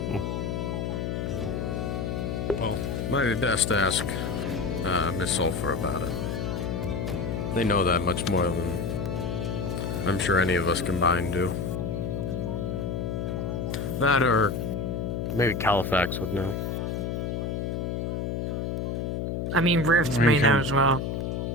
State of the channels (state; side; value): noise; left; hum, 2 dB below the sound